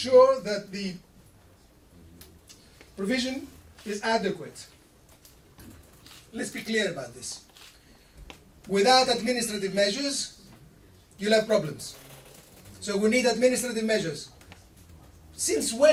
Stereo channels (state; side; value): identical; both; correlation 1.00